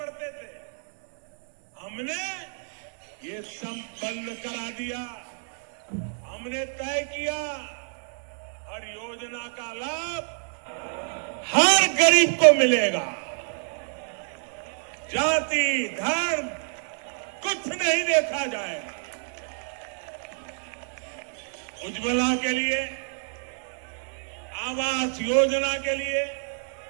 थे। हमने ये सब बंद करा दिया। हमने तय किया हर योजना का लाभ हर गरीब को मिलेगा। जाति धर्म कुछ नहीं देखा जाएगा। उज्ज्वला के लिए, आवास योजना के लिए,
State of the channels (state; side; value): silent; left; 57 dB below the other